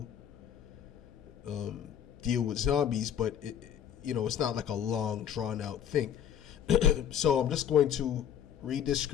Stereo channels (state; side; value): quieter; right; 9.3 dB